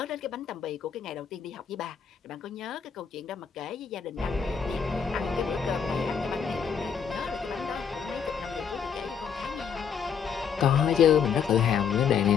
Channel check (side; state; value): right; quieter; 7.0 dB